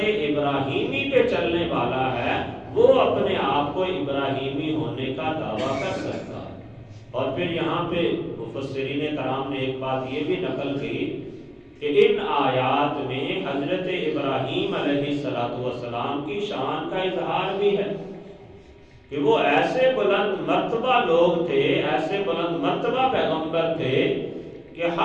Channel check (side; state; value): both; identical; correlation 1.00